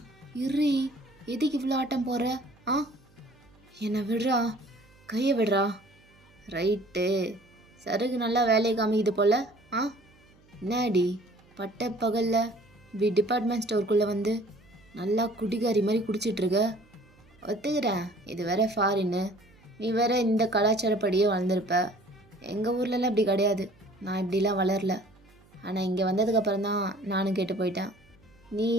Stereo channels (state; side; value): noise; right; hum, 29 dB below the sound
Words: இர்ரி, எதுக்கு இவ்வளோ ஆட்டம் போடுற? ஆ, என்னை விடுறா, கையை விடுறா. ரைட்டு, சருகு நல்லா வேலையை காமிக்குது போல. ஆ, என்னடி பட்ட பகலில் இப்படி டிபார்ட்மெண்ட் ஸ்டோருக்குள்ளே வந்து நல்லா குடிகாரி மாதிரி குடிச்சிட்ருக்க? ஒத்துக்கிறேன், இது வேற ஃபாரின்னு, நீ வேற இந்த கலாச்சாரப்படியே வளர்ந்துருப்ப. எங்கள் ஊர்லலாம் இப்படி கிடையாது, நான் இப்படிலாம் வளரல. ஆனால் இங்கே வந்ததுக்கப்புறம் தான் நானும் கேட்டு போயிட்டேன். நீ